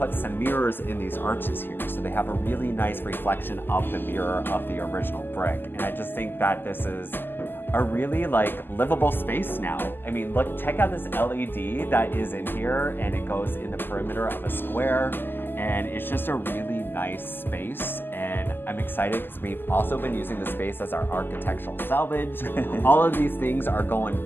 some mirrors in these arches here. So they have a really nice reflection of the mirror of the original brick. And I just think that this is a really livable space now. I mean, look, check out this LED that is in here, and it goes in the perimeter of a square. And it's just a really nice space, and I'm excited because we've also been using the space as our architectural salvage. All of these things are going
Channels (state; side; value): late; right; 0.095 ms